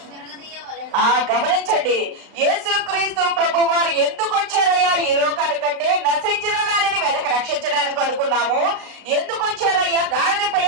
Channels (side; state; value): left; late; 35 ms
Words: గమనించండి, యేసుక్రీస్తు ప్రభు వారు ఎందుకు వచ్చారయ్యా ఈ లోకానికంటే నశించిన దానిని వెనక రక్షించడానికి అనుకున్నాము. ఎందుకు వచ్చారయ్యా? గాడిద